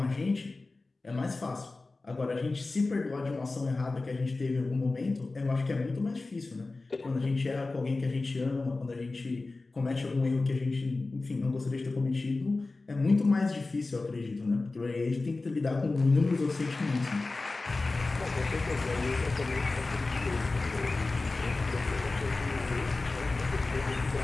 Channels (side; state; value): right; quieter; 3.4 dB